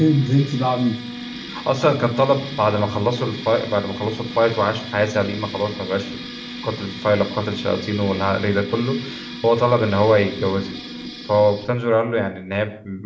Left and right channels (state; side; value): identical; both; correlation 1.00